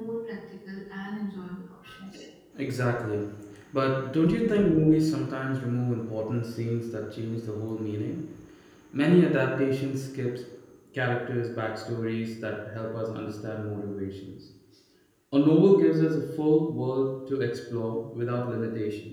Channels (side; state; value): both; identical; correlation 1.00